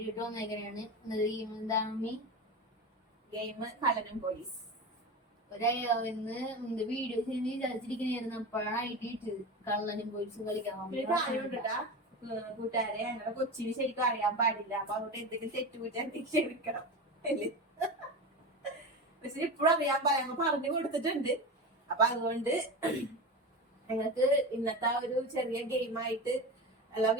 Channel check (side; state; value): both; normal; correlation 0.25